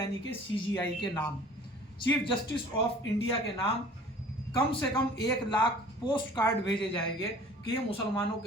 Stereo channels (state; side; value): normal; both; correlation 0.48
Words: कि सीजीआई के नाम, चीफ जस्टिस ऑफ इंडिया के नाम। कम से कम 1 लाख पोस्ट कार्ड भेजे जाएंगे कि ये मुसलमानों